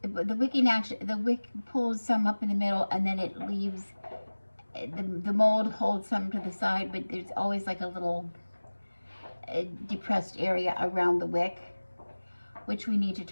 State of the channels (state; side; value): inverted; both; correlation -1.00